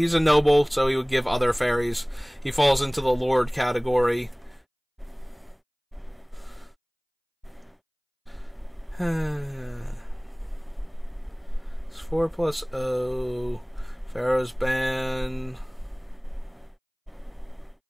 a noble, so he would give other fairies. He falls into the Lord category. It's 4+0. Pharaoh's Ban.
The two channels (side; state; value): both; identical; correlation 1.00